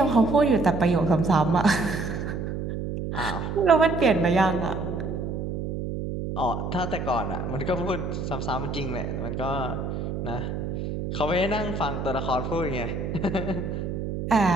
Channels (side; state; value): right; noise; hum, 4 dB below the sound